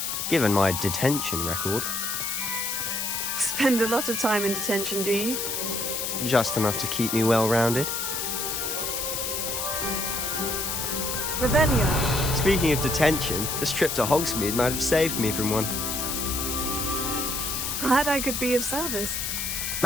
given my detention record. Spend a lot of time in detention, do you? Just enough to keep me well-rounded. Revelio. Speaking of detention, this trip to Hogsmead might have saved me from one. Glad I could be of service.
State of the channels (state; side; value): noise; left; hiss, 2 dB below the sound